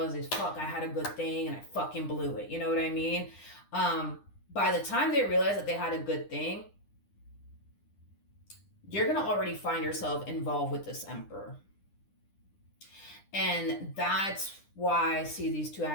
fuck, I had a good thing and I fucking blew it. You know what I mean? By the time they realize that they had a good thing, you're going to already find yourself involved with this emperor. And that's why I see these two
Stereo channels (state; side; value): late; right; 9.9 ms